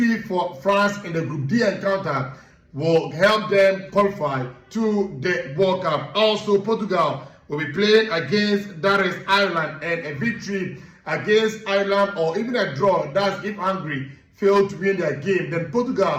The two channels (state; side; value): identical; both; correlation 1.00